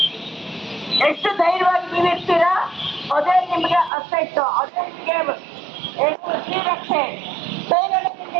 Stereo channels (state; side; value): drops out; left; at 3.9 s